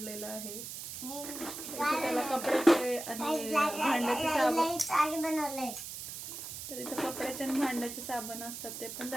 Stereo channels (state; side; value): noise; right; hiss, 8 dB below the sound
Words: आहे. इथे त्याला कपड्याचे आणि भांड्याचे साबण बनवले. तर इथं कपड्याचे आणि भांड्याचे साबण असतात ते पण